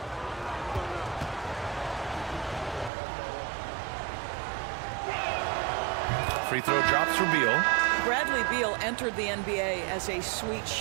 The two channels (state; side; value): drops out; left; at 2.9 s